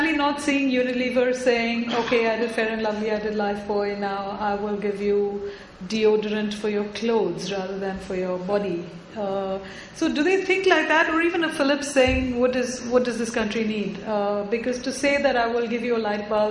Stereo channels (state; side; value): identical; both; correlation 1.00